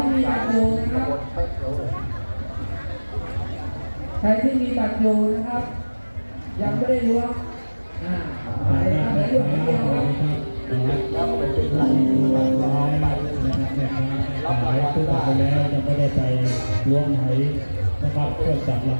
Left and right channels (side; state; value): both; inverted; correlation -1.00